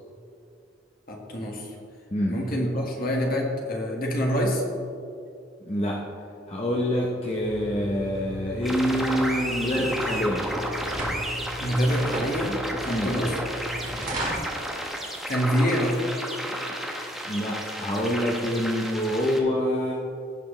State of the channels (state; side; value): normal; both; correlation 0.68